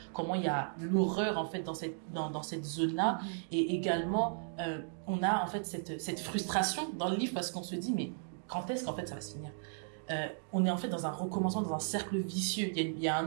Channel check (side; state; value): left; silent; digital silence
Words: comment il y a l'horreur en fait dans cette zone-là, et également on a en fait cette frustration dans le livre parce qu'on se dit mais quand est-ce qu'en fait ça va se finir? On est en fait dans un recommencement, dans un cercle vicieux. Il y a un